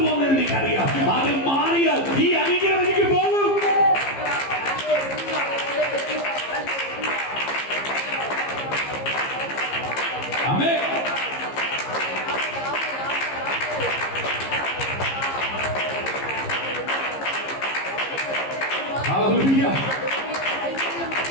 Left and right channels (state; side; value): late; right; 15 ms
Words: എനിക്കറിയാം. അത് മാറിയാൽ ഈ അനുഗ്രഹം എനിക്ക് പോകും. ആമേൻ. ഹല്ലേലൂയ.